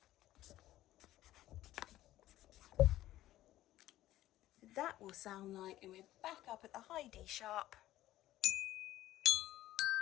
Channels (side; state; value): right; quieter; 14.6 dB